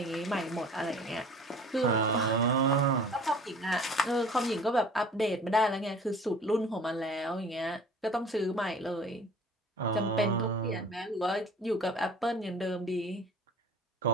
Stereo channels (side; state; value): both; normal; correlation 0.47